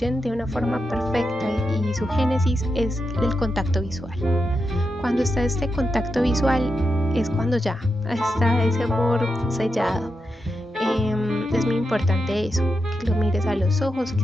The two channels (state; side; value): normal; both; correlation 0.87